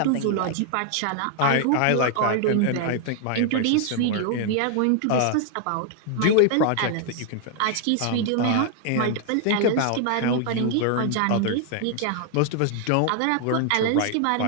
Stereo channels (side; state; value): both; different; correlation 0.00